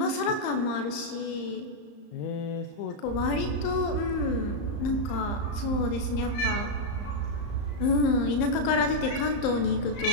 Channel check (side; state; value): right; late; 34 ms